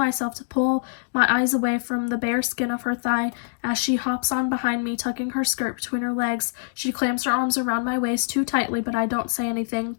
to pull my eyes away from the bare skin of her thigh as she hops on behind me, tucking her skirt between her legs. She clamps her arms around my waist too tightly, but I don't say anything.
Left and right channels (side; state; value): right; silent; digital silence